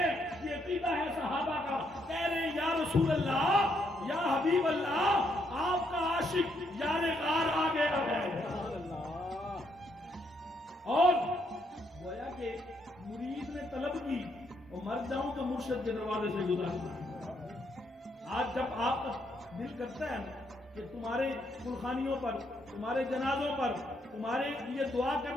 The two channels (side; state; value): both; normal; correlation 0.75